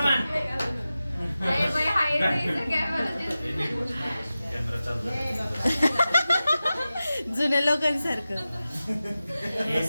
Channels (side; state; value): both; inverted; correlation -0.94